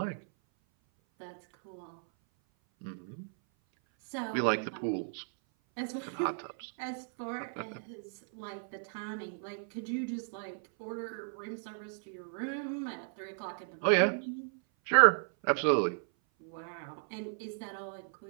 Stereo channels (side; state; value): left; silent; 55 dB below the other